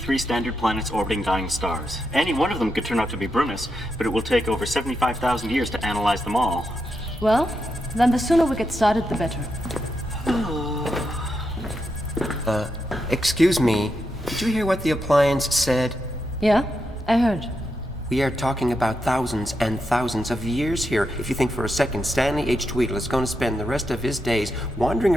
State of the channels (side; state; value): both; normal; correlation 0.85